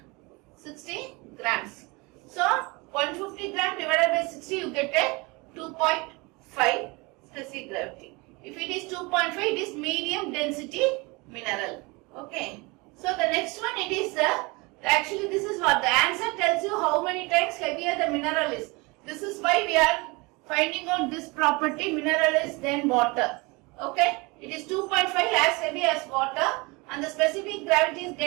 60 grams. So 150 gram divided by 60, you get a 2.5 specific gravity. If it is 2.5, it is medium density mineral. Okay. So the next one, it is actually this is what the answer tells you how many times heavier the mineral is. This is why we are finding out this property, mineral is then water. Okay. It is 2.5 as heavy as water and the specific gravity is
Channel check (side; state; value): left; quieter; 26.1 dB